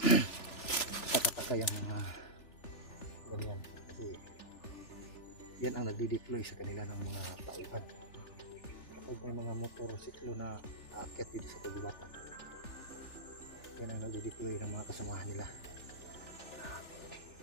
Takataka yung mga ganyan. Kasi yan ang nagdi-deploy sa kanila ng mga tauhan. Kapag may mga motorsiklo na aakyat dito sa kagubatan, yan ang nagdi-deploy ng mga kasamahan nila.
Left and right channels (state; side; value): late; right; 3.4 ms